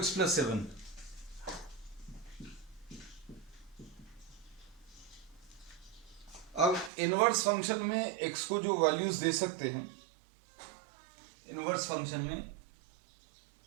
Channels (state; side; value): drops out; left; at 6.9 s